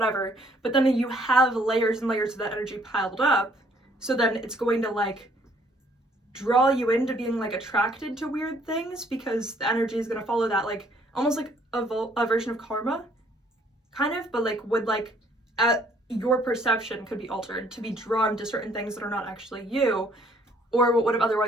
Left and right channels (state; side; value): normal; both; correlation 0.63